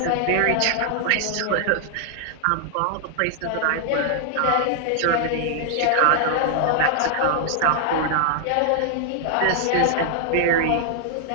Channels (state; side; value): different; both; correlation -0.01